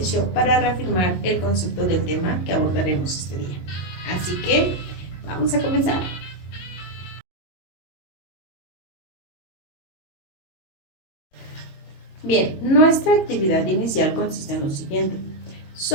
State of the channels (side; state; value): right; late; 22 ms